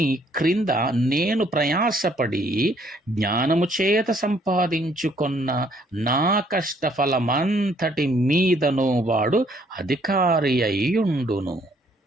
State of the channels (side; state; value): both; normal; correlation 0.65